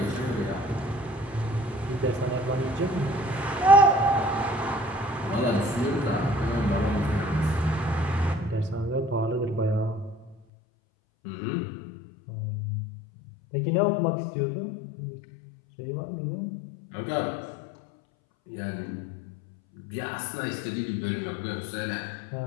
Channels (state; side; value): drops out; right; at 10.4 s